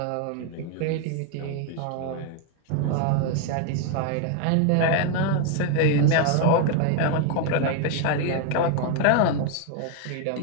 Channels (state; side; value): different; both; correlation 0.01